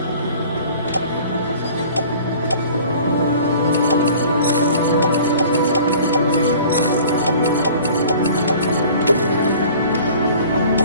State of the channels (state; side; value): inverted; both; correlation -0.47